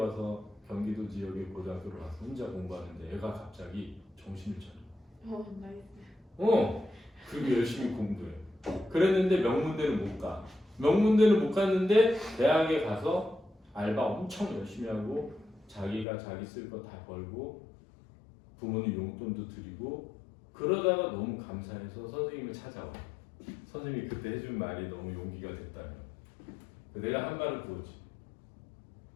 경기도 지역의 고등학교로 가서 혼자 공부하는데 애가 갑자기 정신을 차려. 나이스. 그리고 열심히 공부해. 그랬는데 명문대는 못 가. 명문대는 못 갔는데 대학에 가서 알바 엄청 열심히 하고 자기가 자기 쓸 거 다 벌고 부모님 용돈도 드리고 그러다가 너무 감사해서 선생님을 찾아와. 선생님이 그때 해준 말이 너무 용기가 됐다며. 내가 한 말을 그거지.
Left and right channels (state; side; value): drops out; right; at 16.1 s